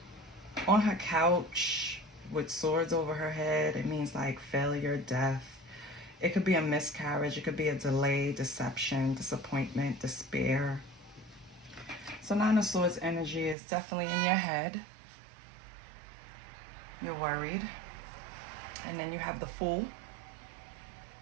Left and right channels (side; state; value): left; drops out; at 13.6 s